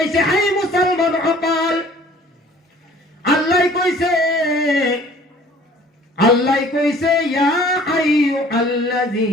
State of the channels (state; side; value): normal; both; correlation 0.52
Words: হে মুছলমান সকল, আল্লাহ কৈছে ইয়া